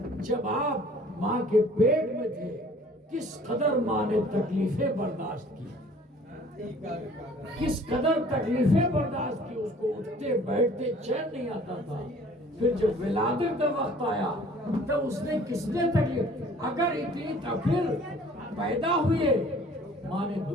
جب آپ ماں کے پیٹ میں تھے کس قدر ماں نے تکلیفیں برداشت کی، کس قدر تکلیفیں برداشت کی، اس کو اٹھتے بیٹھتے چین نہیں آتا تھا۔ پھر جب ولادت کا وقت آیا تب اس نے کس نے تکلیف، اگر اتنی پھر پیدا ہوئے ماں نے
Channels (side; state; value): both; normal; correlation 0.52